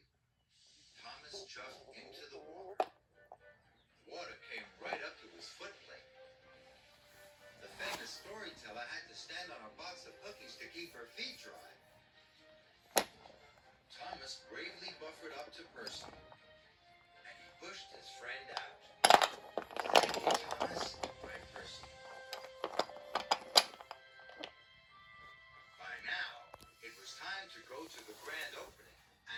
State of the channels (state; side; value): identical; both; correlation 1.00